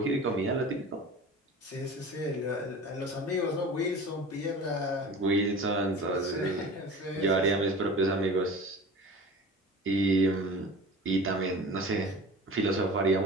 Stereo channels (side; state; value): both; normal; correlation 0.37